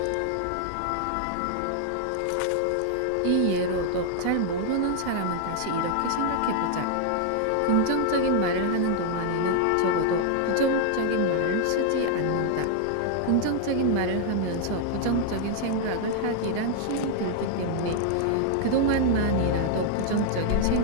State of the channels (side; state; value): both; different; correlation 0.00